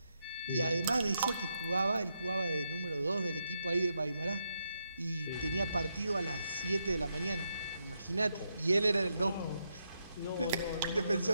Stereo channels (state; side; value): inverted; both; correlation -0.81